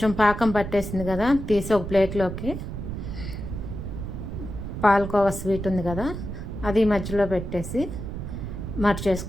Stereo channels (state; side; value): noise; right; rumble, 7 dB below the sound